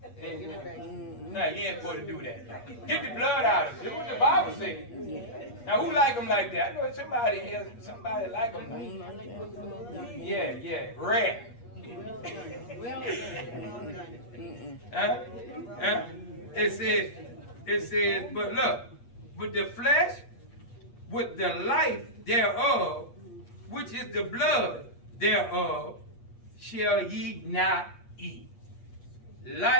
Now you ain't supposed to do that. Get the blood out of it. Do what the Bible says. Now who like them like that? I know somebody here, somebody like them like that. Yeah, rare. It says, but look, with the flesh, with the life thereof, which is the blood thereof, shall ye not eat.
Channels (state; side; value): late; right; 8.4 ms